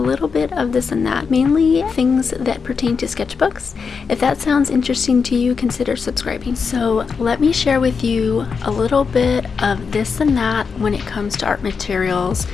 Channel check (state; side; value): quieter; right; 5.5 dB